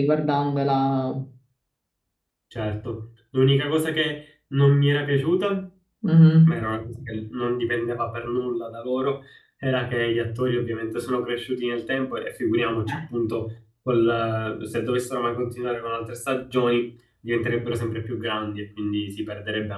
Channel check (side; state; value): both; identical; correlation 1.00